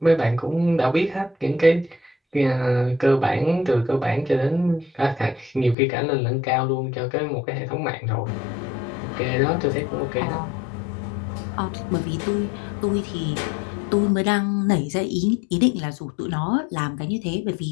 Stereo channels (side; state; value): right; drops out; at 5.8 s